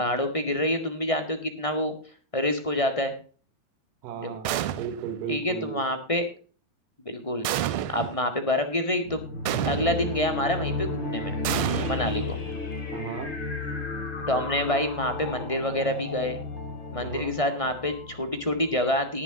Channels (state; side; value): late; right; 1.6 ms